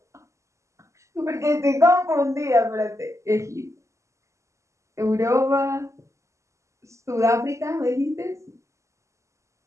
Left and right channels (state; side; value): late; left; 0.14 ms